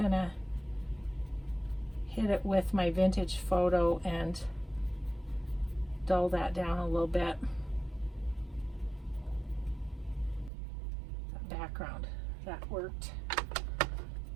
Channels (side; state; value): left; drops out; at 10.5 s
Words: hit it with my vintage photo and dull that down a little bit. That background, that worked.